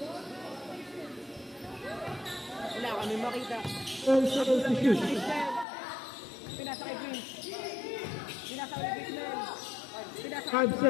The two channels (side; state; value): right; drops out; at 5.7 s